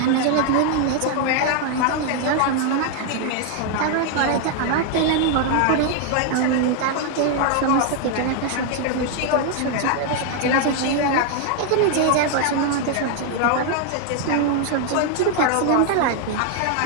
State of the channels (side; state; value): both; different; correlation 0.00